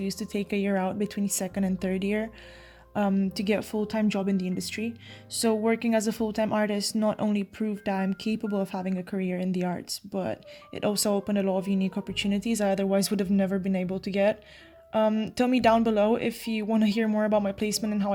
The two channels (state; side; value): identical; both; correlation 1.00